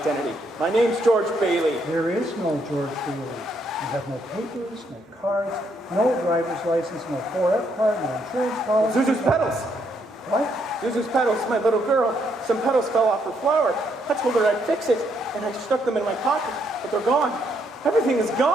My name's George Bailey. There is no George Bailey. You have no papers, no cards, no driver's license, no 4F card, no insurance policy. Zuzu's petals. What? Zuzu's petals, my little girl. Some petals fell off her flower. I told her I'd fix it, and I stuck them in my pocket, but they're gone. Everything is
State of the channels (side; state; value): both; normal; correlation 0.74